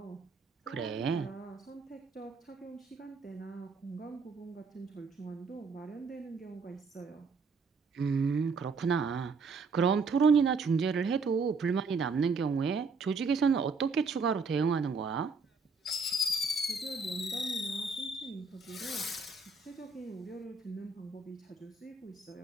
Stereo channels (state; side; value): quieter; left; 4.4 dB